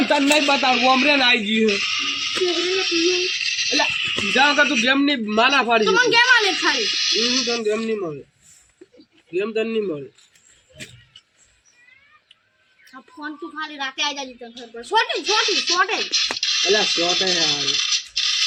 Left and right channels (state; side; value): identical; both; correlation 1.00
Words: તને નહીં બતાવું ઓમરે ને આવી ગયું એટલે જાવ કે તું ગેમ ની માના ફાડી તો મને ગેમ આલે ખાલી તને ગેમ નહીં મળે ગેમ તને નહીં મળે આ ફોન તું ખાલી રાતે આવી જાજી તને ખબર પડે છોટી એટલે શોટ હે યાર